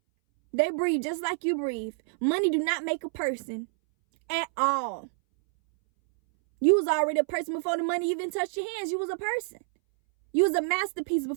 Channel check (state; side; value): silent; left; 60 dB below the other